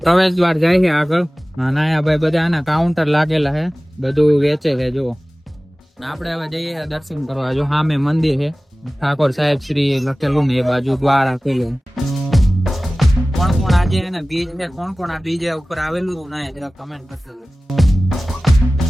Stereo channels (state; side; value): normal; both; correlation 0.97